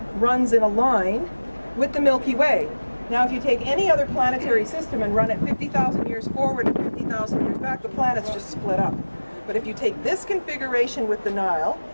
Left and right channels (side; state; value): both; inverted; correlation -1.00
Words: runs in a line with the Milky Way. Now if you take any other planetary system and run it 50,000 years forward and 50,000 years back, the planets just split up. But if you take this configuration with the Nile,